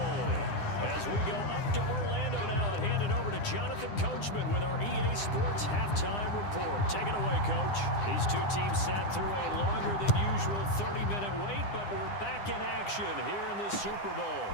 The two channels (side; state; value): right; late; 9.9 ms